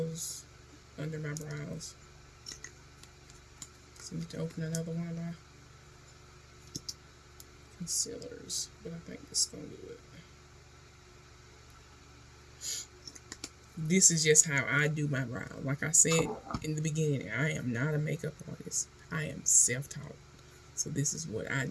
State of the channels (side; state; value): both; identical; correlation 1.00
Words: under my brows. So I need to open another one of my concealers, but I think this is going to do it. This is just how I do my brows. Like I said in the beginning, I am not a makeup artist. I am self-taught. So this is what I